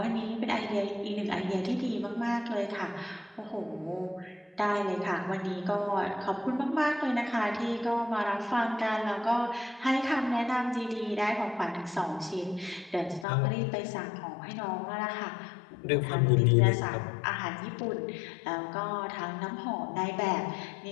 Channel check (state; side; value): drops out; right; at 13.2 s